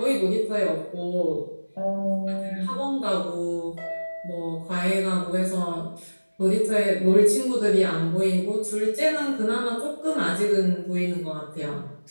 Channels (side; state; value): both; inverted; correlation -1.00